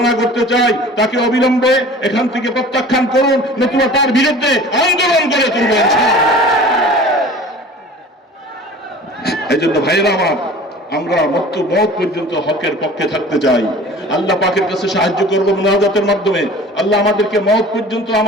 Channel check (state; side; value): normal; both; correlation 0.43